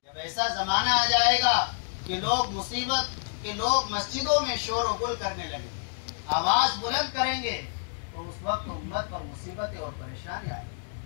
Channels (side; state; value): right; silent; digital silence